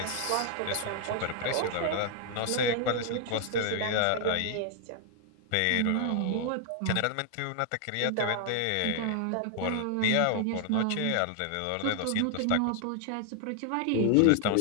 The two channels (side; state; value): both; different; correlation 0.00